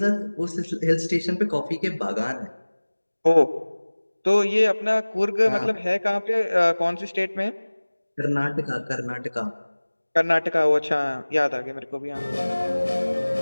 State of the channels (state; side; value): inverted; both; correlation -1.00